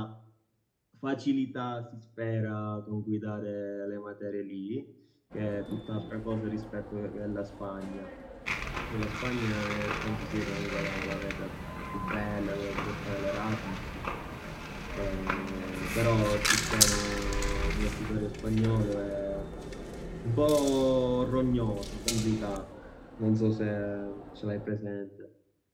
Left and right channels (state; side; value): identical; both; correlation 1.00